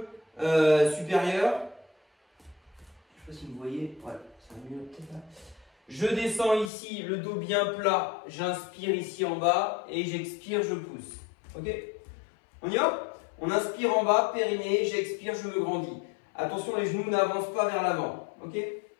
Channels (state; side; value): drops out; right; at 6.7 s